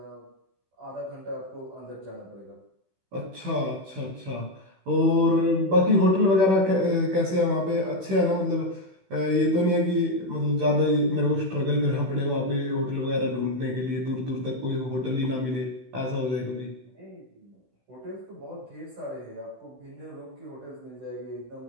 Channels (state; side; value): late; left; 16 ms